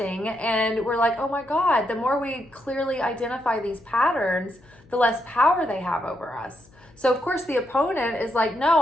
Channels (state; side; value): noise; left; hum, 28 dB below the sound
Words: and we're like, oh my God, the more we clearly identify these patterns, the less power they have over us. So of course the opponent is like,